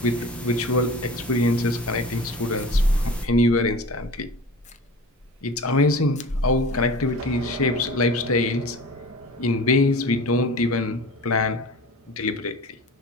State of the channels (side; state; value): both; normal; correlation 0.37